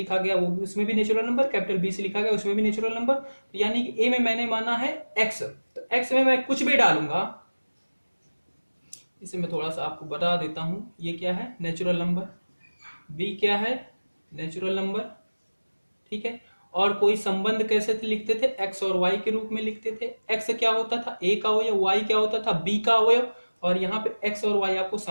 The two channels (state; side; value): inverted; both; correlation -1.00